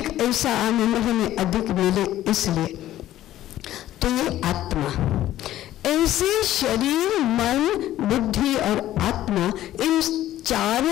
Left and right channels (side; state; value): right; quieter; 13.6 dB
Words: ऐसा आनंद हमें अधिक मिले इसलिए। तो ये आत्मा, ऐसे शरीर, मन, बुद्धि और आत्मा, इन